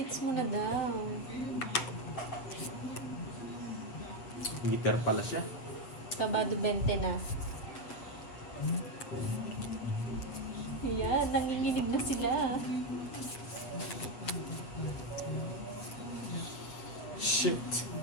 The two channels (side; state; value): right; late; 7.8 ms